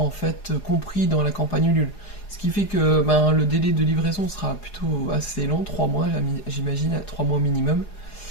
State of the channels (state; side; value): late; right; 4.8 ms